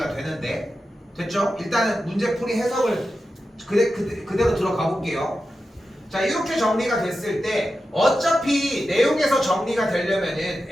되는데 됐죠? 일단은 문제풀이 해석을 그대로 들어가 볼게요. 자 이렇게 정리가 됐을 때 어차피 내용에서 정리가 되려면은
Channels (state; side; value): normal; both; correlation 0.91